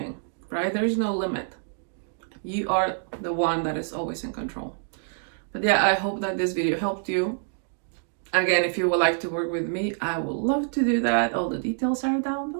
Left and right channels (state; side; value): silent; left; digital silence